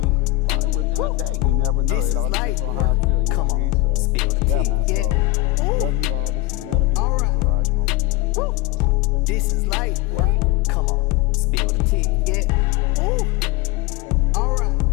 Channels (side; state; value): right; quieter; 18.5 dB